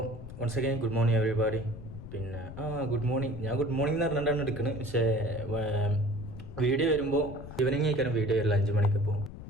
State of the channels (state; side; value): noise; left; rumble, 12 dB below the sound